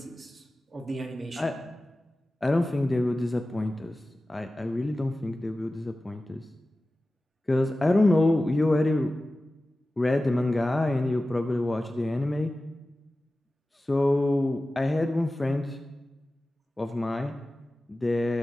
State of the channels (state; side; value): normal; both; correlation 0.96